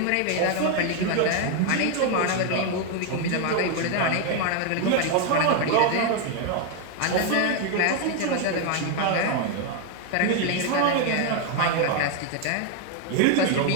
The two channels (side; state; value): both; different; correlation 0.01